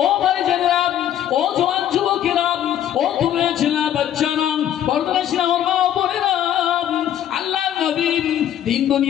ও ভাই জানেরা, ও জওয়ান যুবকেরা, ও তোমরা ছেলে বাচ্চারা, পর্দার সিনেমা মা বোনেরা, আল্লাহর নবী দিন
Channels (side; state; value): right; quieter; 10.9 dB